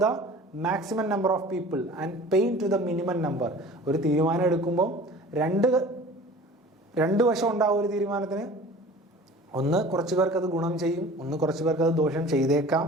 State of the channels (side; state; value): both; normal; correlation 0.43